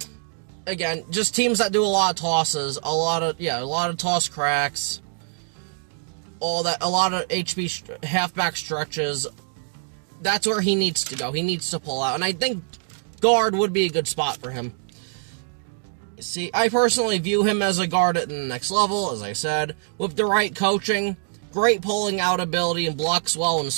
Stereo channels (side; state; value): left; silent; digital silence